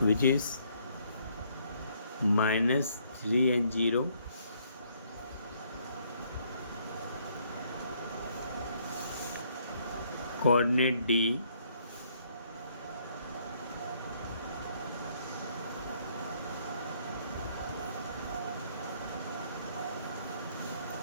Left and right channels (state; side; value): inverted; both; correlation -0.67